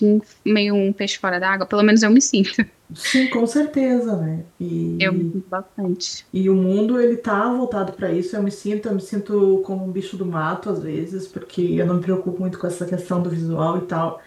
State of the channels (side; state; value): both; identical; correlation 1.00